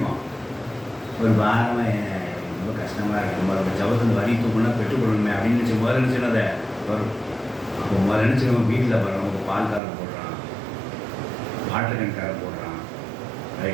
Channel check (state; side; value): drops out; left; at 9.8 s